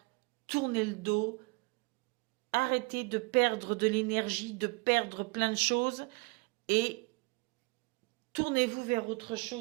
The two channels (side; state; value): left; quieter; 28.3 dB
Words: tournez le dos, arrêtez de perdre de l'énergie, de perdre plein de choses et tournez-vous vers autre